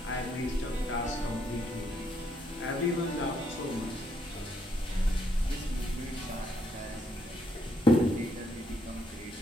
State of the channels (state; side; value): normal; both; correlation 0.74